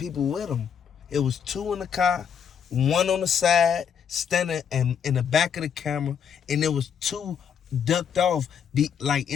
with him. It was 2 in the car, 1 on the side, standing in the back of the camera, and there was 2 ducked off, like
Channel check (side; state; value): right; quieter; 7.6 dB